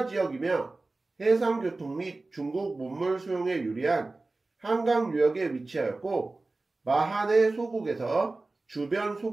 지역이며 해상교통 및 중국 문물 수용에 유리한 한강 유역에 위치하였고 마한의 소국에서 주변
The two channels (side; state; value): left; quieter; 3.3 dB